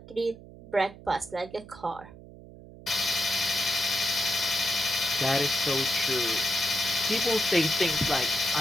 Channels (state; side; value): noise; right; hum, 18 dB below the sound